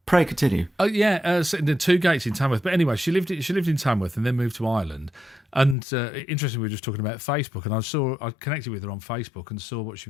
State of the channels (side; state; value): right; drops out; at 5.8 s